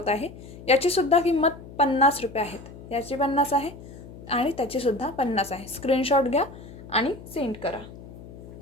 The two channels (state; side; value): noise; left; hum, 16 dB below the sound